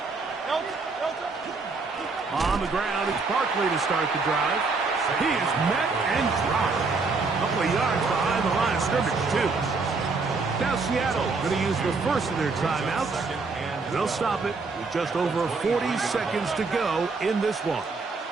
On the ground, it's Barkley to start the drive. He is met and dropped. A couple of yards behind the line of scrimmage, too. Now Seattle going to use the first of their timeouts. They'll stop it with just over 40 seconds to go in this one.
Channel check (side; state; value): left; quieter; 4.1 dB